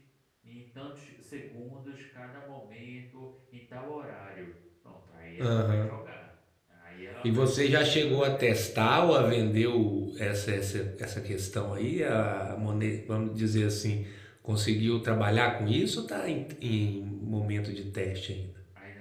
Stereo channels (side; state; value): both; identical; correlation 1.00